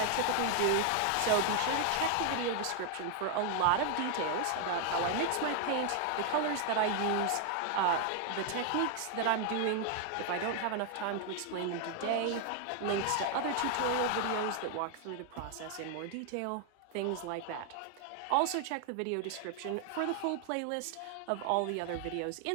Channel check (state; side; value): different; both; correlation 0.00